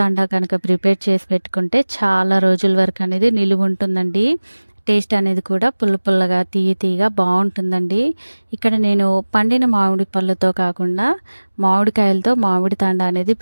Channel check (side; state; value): both; inverted; correlation -1.00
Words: కనుక ప్రిపేర్ చేసి పెట్టుకుంటే చాలా రోజుల వరకు అనేది నిలువుంటుందండి. టేస్ట్ అనేది కూడా పుల్ల పుల్లగా, తియ్య తియ్యగా బావుంటుందండి. ఇక్కడ నేను పండిన మామిడి పళ్ళతో కాకుండా మామిడికాయలతో మామిడి తాండా అనేది